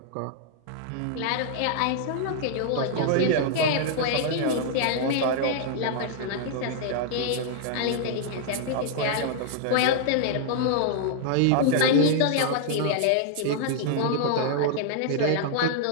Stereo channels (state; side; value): different; both; correlation -0.01